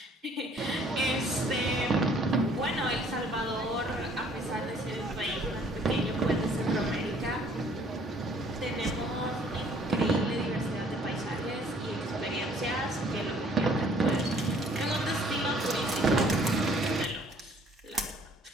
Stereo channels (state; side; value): normal; both; correlation 0.59